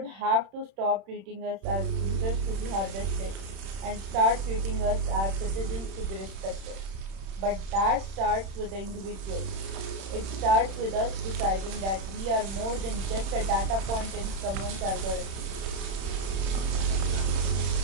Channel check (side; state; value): left; late; 31 ms